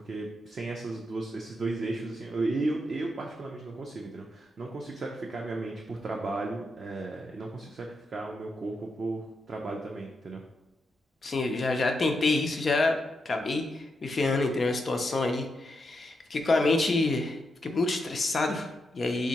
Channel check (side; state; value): both; normal; correlation 0.84